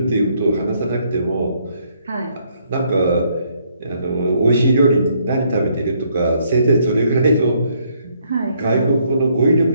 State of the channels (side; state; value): both; inverted; correlation -0.70